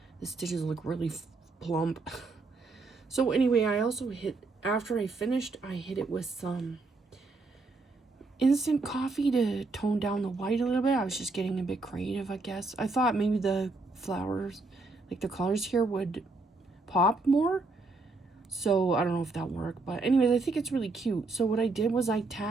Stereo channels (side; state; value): left; quieter; 3.5 dB